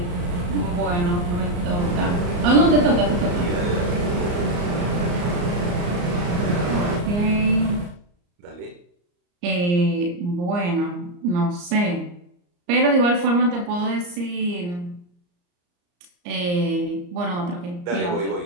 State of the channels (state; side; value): late; left; 34 ms